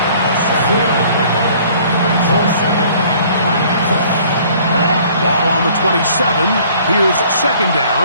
Ball on the 27. Here's 2nd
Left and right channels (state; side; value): inverted; both; correlation -0.55